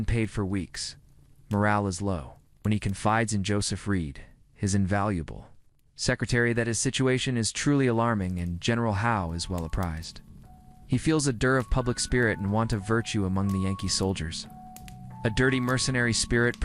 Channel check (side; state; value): both; identical; correlation 1.00